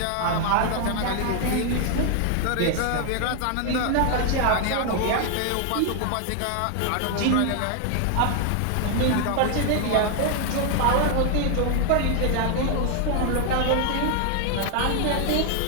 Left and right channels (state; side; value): different; both; correlation 0.00